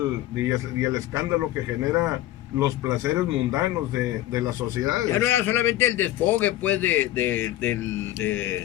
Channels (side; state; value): right; quieter; 14.7 dB